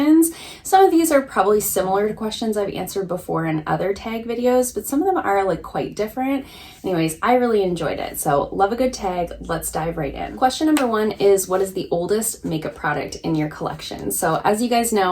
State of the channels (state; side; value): identical; both; correlation 1.00